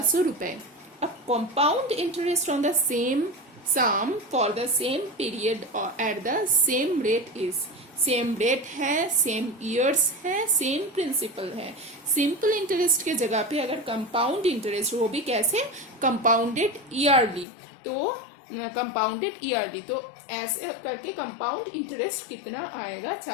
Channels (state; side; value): drops out; right; at 17.4 s